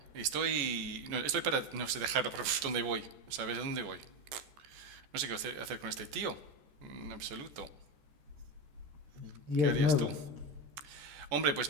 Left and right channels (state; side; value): late; left; 14 ms